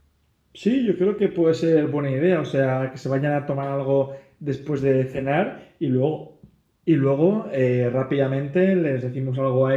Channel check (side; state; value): both; identical; correlation 1.00